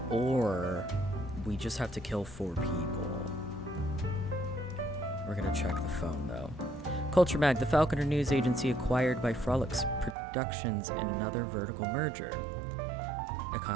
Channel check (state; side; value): drops out; left; at 10.2 s